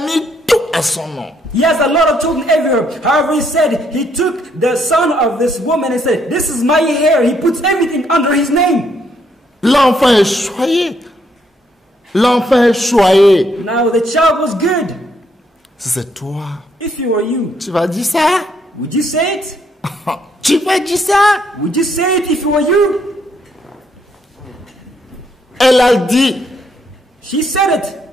mis tout à son nom. He has a lot of children everywhere. However, he said he took the son of this woman and said, this is my heir. He puts everything under his name. L'enfant est choyé. L'enfant est choyé. Now the child was good. Si c'est toi, If you were you, tu vas dire ça? would you say it? Tu vas dire ça? Would you say it if you were you? Elle a dit. She said it.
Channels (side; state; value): both; normal; correlation 0.72